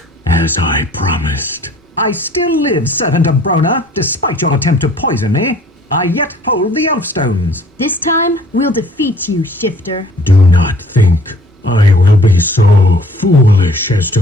as I promised. I still live, servant of Brona, despite your attempt to poison me. I yet hold the elf stones. This time, we'll defeat you, Shifter. Do not think I will be so foolish as to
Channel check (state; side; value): normal; both; correlation 0.54